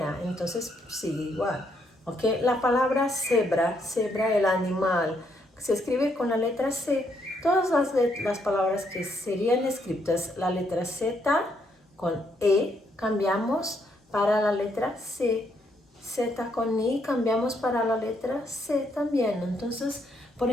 entonces sigue igual. ¿Okay? La palabra cebra, el animal, se escribe con la letra C. Todas las palabras que serían escritas la letra Z con E cambiamos para la letra C. Z con I cambiamos para la letra C también. Entonces, por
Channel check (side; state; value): both; normal; correlation 0.74